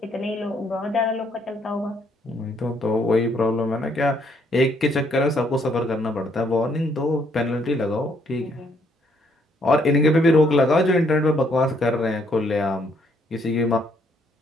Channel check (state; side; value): normal; both; correlation 0.69